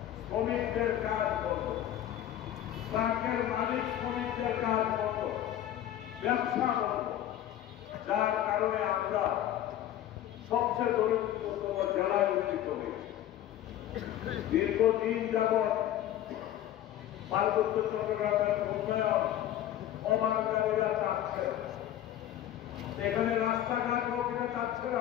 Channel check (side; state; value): right; quieter; 12.0 dB